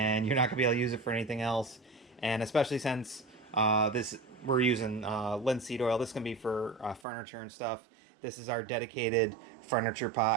you're not going to be able to use it for anything else. And especially since we're using linseed oil, this is going to be for furniture and stuff. This is our dedicated furniture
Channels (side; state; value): left; drops out; at 7.1 s